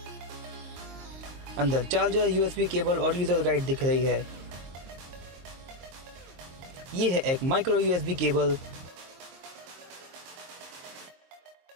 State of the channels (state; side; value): late; left; 23 ms